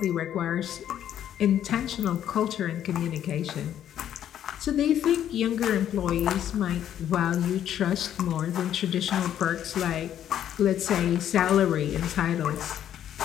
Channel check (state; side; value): quieter; right; 10.5 dB